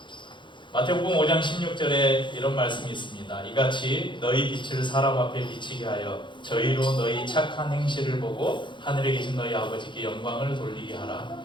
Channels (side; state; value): right; late; 0.23 ms